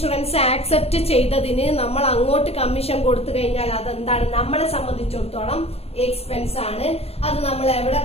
ആക്സെപ്റ്റ് ചെയ്തതിന് നമ്മൾ അങ്ങോട്ട് കമ്മീഷൻ കൊടുത്തു കഴിഞ്ഞാൽ അതെന്താണ്, നമ്മളെ സംബന്ധിച്ചിടത്തോളം എക്സ്പെൻസ് ആണ്. അത് നമ്മൾ എവിടെ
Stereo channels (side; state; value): right; late; 0.29 ms